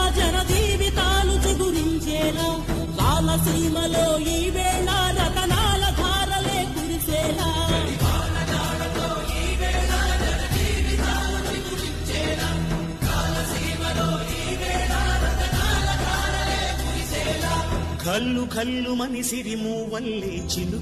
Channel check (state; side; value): identical; both; correlation 1.00